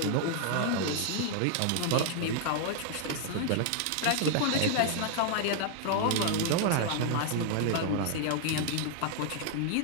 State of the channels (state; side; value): different; both; correlation 0.00